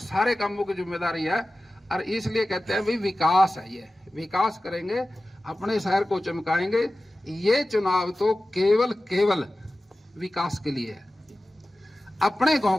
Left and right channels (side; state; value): both; normal; correlation 0.95